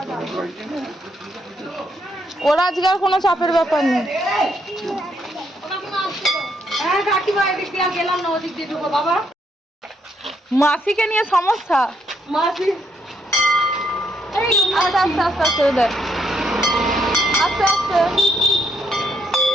শুরু করেছে না। ওরা আজকে আর কোনো চাপের ব্যাপার নেই। হ্যাঁ কাকিমা এদিক দিয়ে গেলাম না, ওদিক দিয়ে ঢুকো বাবা। মাসিকে নিয়ে সমস্যা। মাসি আস্তে আস্তে আস্তে আস্তে দেখ, আস্তে আস্তে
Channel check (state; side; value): normal; both; correlation 0.74